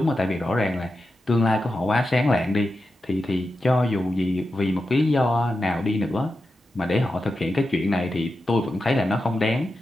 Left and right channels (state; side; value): normal; both; correlation 0.90